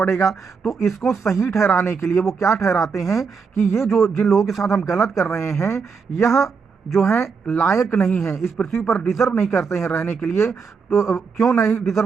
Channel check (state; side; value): quieter; left; 5.4 dB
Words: तो इसको सही ठहराने के लिए वो क्या ठहराते हैं कि ये जो जिन लोगों के साथ हम गलत कर रहे हैं, यह जो है लायक नहीं है, इस पृथ्वी पर डिजर्व नहीं करते हैं रहने के लिए। तो क्यों नहीं